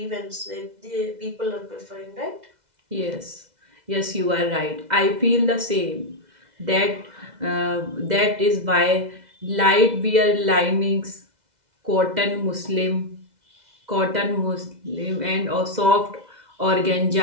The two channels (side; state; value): left; late; 2.0 ms